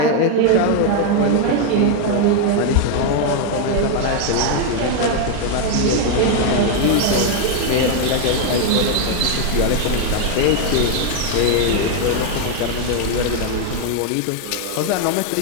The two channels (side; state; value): both; different; correlation 0.01